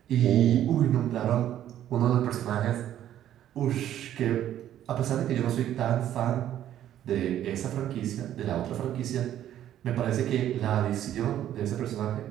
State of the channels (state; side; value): quieter; left; 11.5 dB